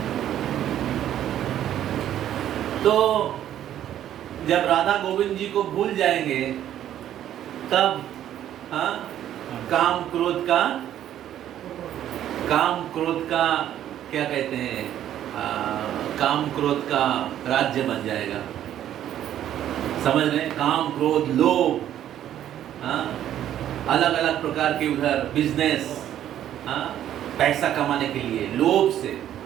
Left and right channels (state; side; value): quieter; left; 11.3 dB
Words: तो जब राधा गोविंद जी को भूल जाएंगे तब, हाँ, काम क्रोध का क्या कहते हैं, काम क्रोध का राज्य बन जाएगा। समझ रहे? काम क्रोध लोभ, हाँ, अलग अलग प्रकार के उधर बिजनेस, हाँ, पैसा कमाने के लिए लोभ से।